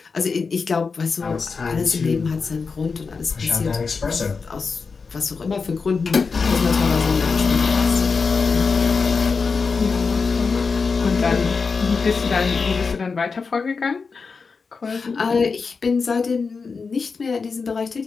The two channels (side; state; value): right; quieter; 4.9 dB